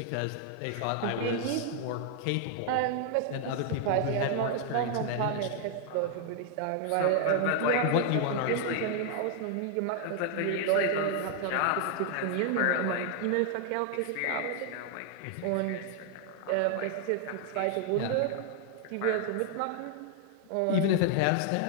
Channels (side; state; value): both; different; correlation 0.00